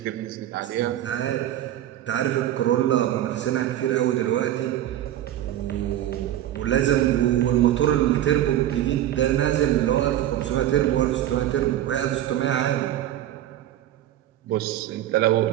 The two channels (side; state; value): left; quieter; 12.6 dB